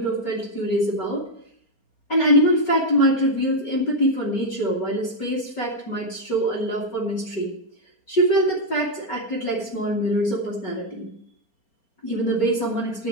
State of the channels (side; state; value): right; late; 4.3 ms